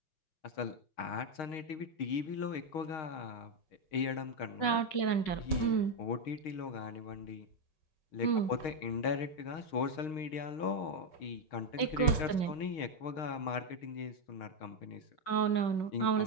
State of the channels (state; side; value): late; right; 5.4 ms